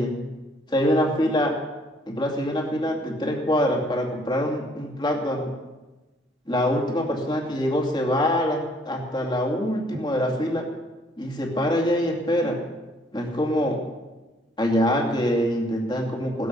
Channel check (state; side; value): normal; both; correlation 0.63